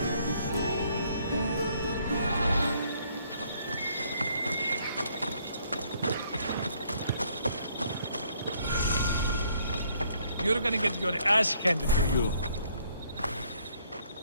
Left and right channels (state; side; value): inverted; both; correlation -0.66